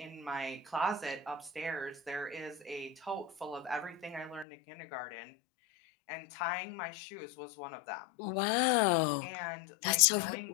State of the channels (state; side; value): drops out; right; at 4.5 s